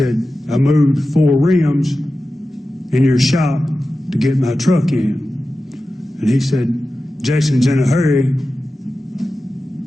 I moved 4 rims in your shop to get my truck in. And he said, Jason's in a hurry.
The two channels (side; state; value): both; normal; correlation 0.94